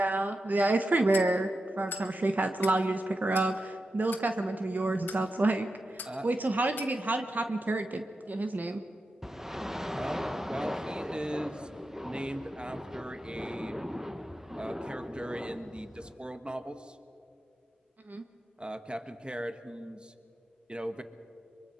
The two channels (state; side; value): normal; both; correlation 0.89